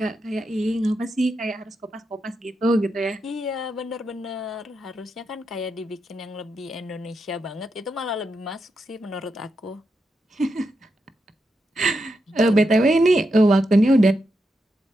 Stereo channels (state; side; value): normal; both; correlation 0.85